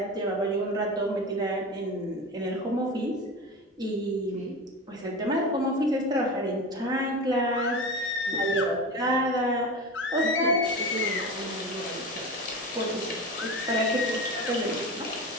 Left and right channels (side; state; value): both; normal; correlation 0.27